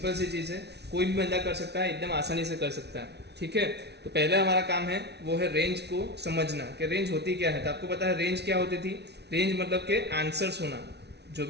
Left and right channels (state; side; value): late; left; 0.49 ms